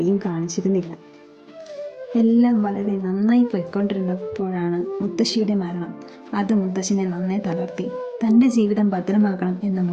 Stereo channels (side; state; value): both; identical; correlation 1.00